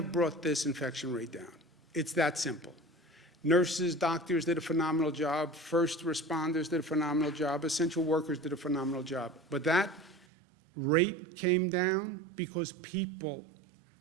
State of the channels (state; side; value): drops out; left; at 10.2 s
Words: brought this infection rate down. It's that simple. Nurses, doctors did a phenomenal job. First responders did a phenomenal job. Essential workers did a phenomenal job. But that rate came down because people